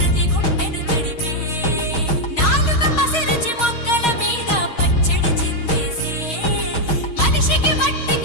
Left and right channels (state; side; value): late; right; 6.3 ms